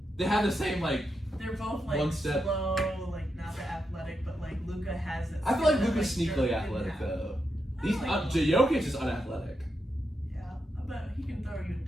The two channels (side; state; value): both; normal; correlation 0.85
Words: They have the same like. They're both like one step. slow, like not that athletic, but like Luka has it. I feel like Luka's sneakily athletic though. He's Jokic is unathletic. Yeah, but he can throw you a